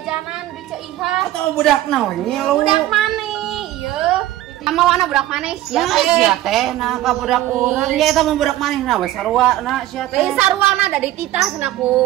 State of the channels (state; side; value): quieter; left; 14.6 dB